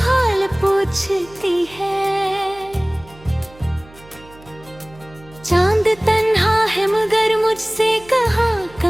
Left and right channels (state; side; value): noise; right; hum, 23 dB below the sound